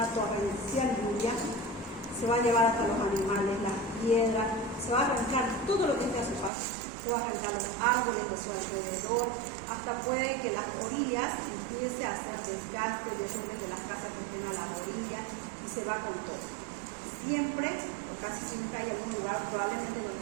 torrencial lluvia, se va a llevar hasta los animales, las piedras, se va a arrancar todo lo que esté a su paso, se va a arrancar los árboles de su alrededor, hasta puede que las orillas empiece a hacer desgaste de las casas que estén a las orillas y se va con todo. Siempre, o casi siempre, hay algún lugar probablemente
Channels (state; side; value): drops out; left; at 6.5 s